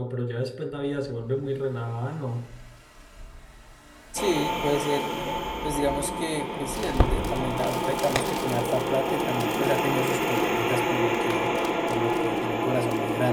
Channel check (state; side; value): identical; both; correlation 1.00